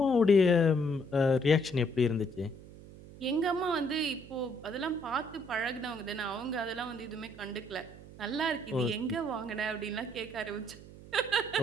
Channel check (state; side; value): noise; right; hum, 18 dB below the sound